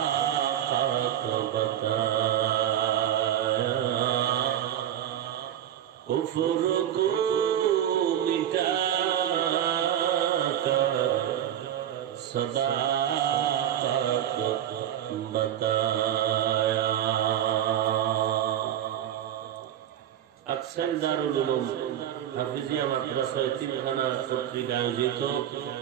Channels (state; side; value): quieter; left; 10.9 dB